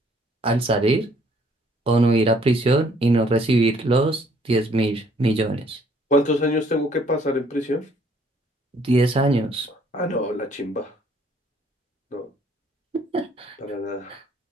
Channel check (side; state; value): both; normal; correlation 0.63